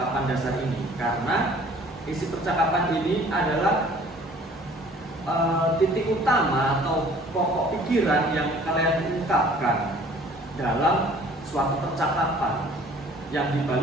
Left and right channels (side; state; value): both; normal; correlation 0.52